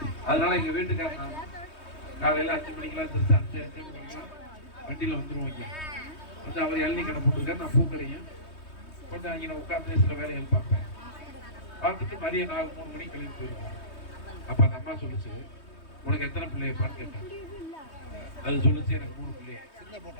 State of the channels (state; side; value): late; right; 3.2 ms